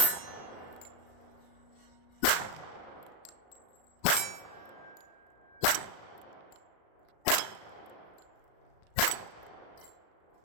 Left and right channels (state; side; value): late; right; 36 ms